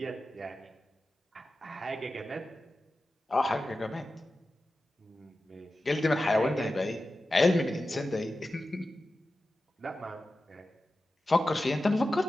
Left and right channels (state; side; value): normal; both; correlation 0.93